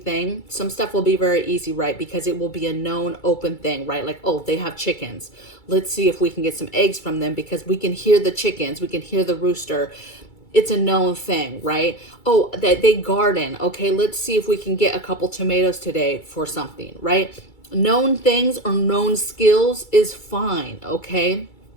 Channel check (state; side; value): late; right; 2.3 ms